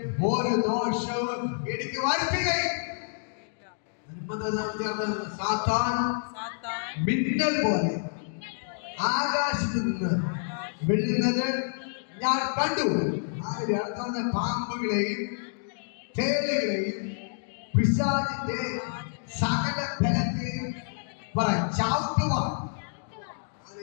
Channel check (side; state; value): right; silent; digital silence